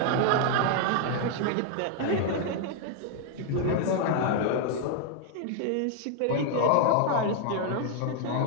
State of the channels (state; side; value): different; both; correlation 0.00